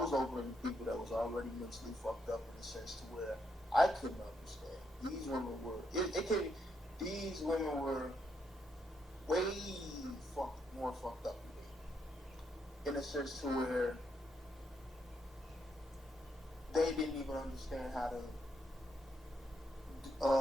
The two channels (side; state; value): both; normal; correlation 0.78